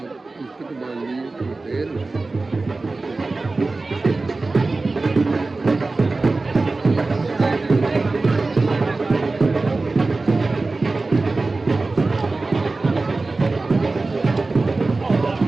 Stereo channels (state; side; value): quieter; left; 3.5 dB